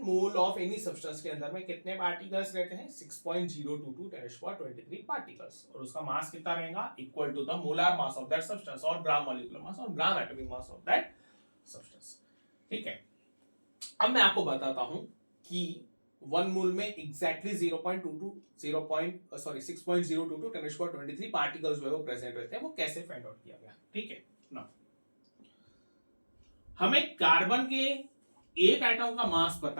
मोल ऑफ एनी सब्सटेंस के अंदर में कितने पार्टिकल्स रहते हैं, 6.022 10⁻23 पार्टिकल्स, और उसका मास कितना रहेगा, equal to the molar mass of that substance और ग्राम मॉलिक्यूलर मास और gram atomic mass of that substance. ठीक है, अब मैं आपको बताता हूं कि 1 मोल में एग्जैक्टली 6.022 10⁻23 पार्टिकल्स जो है वो प्रेजेंट रहते हैं, वो कैसे फाइंड आउट किया गया। ठीक है ना, हमें कार्बन के एक एटम का मास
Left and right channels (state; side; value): inverted; both; correlation -1.00